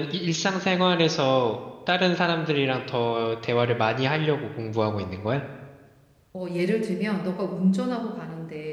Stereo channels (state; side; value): identical; both; correlation 1.00